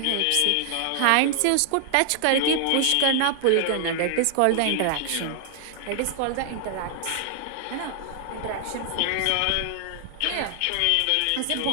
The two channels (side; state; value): both; different; correlation 0.00